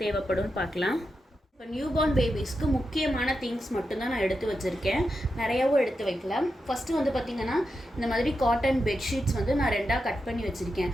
தேவைப்படும்னு பார்க்கலாம். இப்போ நியூ பார்ன் பேபிஸ்க்கு முக்கியமான திங்ஸ் மட்டும்தான் நான் எடுத்து வச்சுருக்கேன். நிறையாவும் எடுத்து வைக்கலாம். ஃபஸ்ட்டு வந்து பார்த்திங்கன்னா இந்த மாதிரி காட்டன் பெட்ஷீட்ஸ் வந்து நான் 2ஆக கட் பண்ணி வச்சுருக்கேன்.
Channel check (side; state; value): both; normal; correlation 0.88